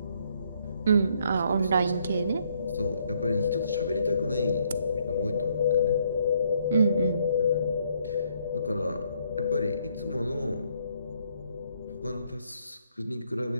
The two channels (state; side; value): inverted; both; correlation -0.69